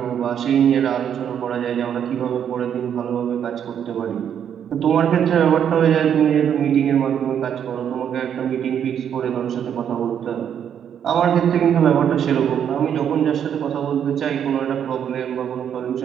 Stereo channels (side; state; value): left; quieter; 8.8 dB